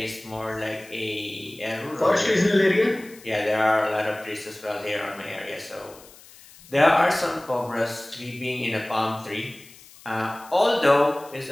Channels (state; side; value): noise; left; hiss, 22 dB below the sound